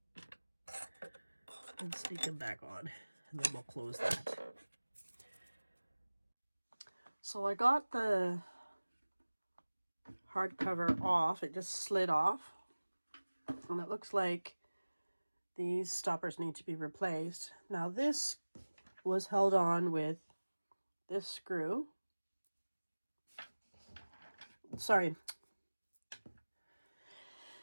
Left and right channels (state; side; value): inverted; both; correlation -1.00